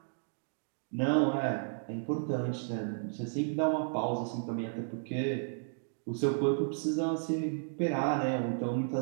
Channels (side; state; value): left; silent; digital silence